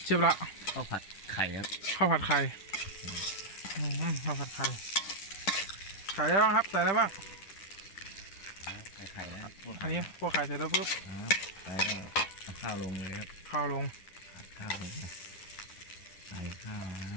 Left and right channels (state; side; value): late; right; 10 ms